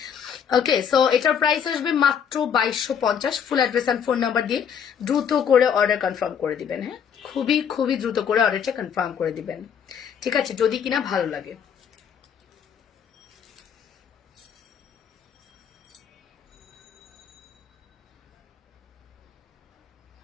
ওকে, সো এটার প্রাইস আসবে মাত্র 2250। Full address and phone number দিয়ে দ্রুত করে অর্ডার কনফার্ম করে দিবেন, হ্যাঁ। খুবই খুবই দ্রুত করে অর্ডারটা কনফার্ম করে দিবেন, ঠিক আছে, যদি কিনা ভালো লাগে।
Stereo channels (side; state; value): right; quieter; 7.7 dB